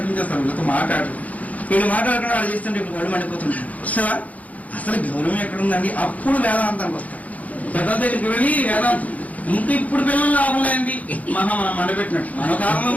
వీళ్ళతో మాట్లాడు. వీళ్ళు మాట్లాడుకుని వాళ్ళు చేస్తుంటే ఇప్పుడు వాళ్ళు మండిపోతుంటారు. సార్ అసలు గౌరవం ఎక్కడుందండి? అప్పుడు వేదాంతానికి వస్తారు. పెద్ద దగ్గరికి వెళ్ళి వేదాంతం ఇంక ఇప్పుడు పిల్లలు లాభం లేండి మనం మండపెట్టినట్టు. మన కాలంలో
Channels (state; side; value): late; right; 0.072 ms